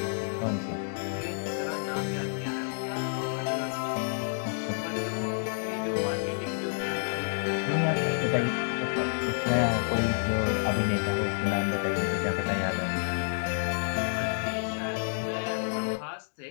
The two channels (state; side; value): silent; right; digital silence